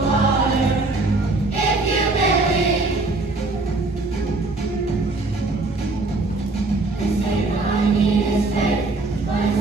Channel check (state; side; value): quieter; left; 3.3 dB